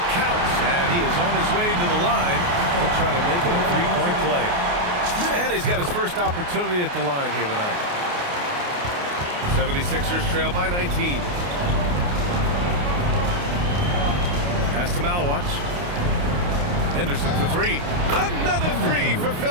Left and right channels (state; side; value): late; left; 28 ms